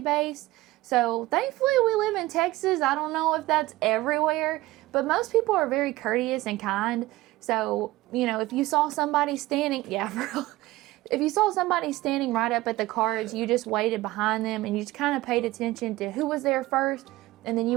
So, thankfully, we live in Texas. I don't know if that's everywhere, but most people are very courteous and kind. So, you know, if you saw somebody standing, if you saw somebody standing right up at the cards, you just waited behind them and you just kind of paid attention to who was there first, and then you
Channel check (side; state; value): left; quieter; 18.3 dB